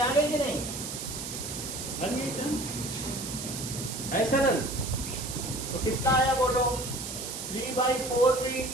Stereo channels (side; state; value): right; noise; hiss, 7 dB below the sound